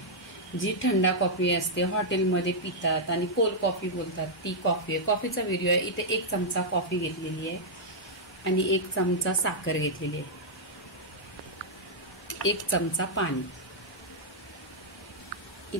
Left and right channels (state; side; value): normal; both; correlation -0.06